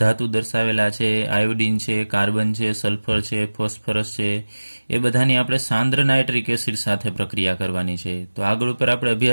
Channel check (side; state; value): both; inverted; correlation -1.00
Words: દર્શાવેલા છે. આયોડિન છે, કાર્બન છે, સલ્ફર છે, ફોસ્ફરસ છે. એ બધાની આપણે સાંદ્ર નાઇટ્રિક એસિડ સાથે પ્રક્રિયા કરવાની છે. તો આગળ ઉપર આપણે